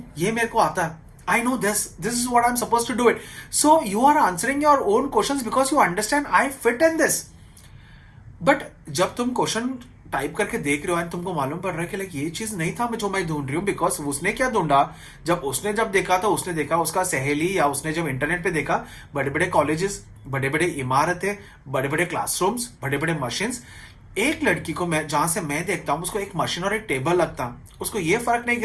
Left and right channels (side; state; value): both; identical; correlation 1.00